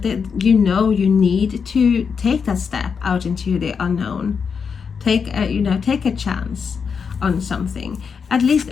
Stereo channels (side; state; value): right; quieter; 6.1 dB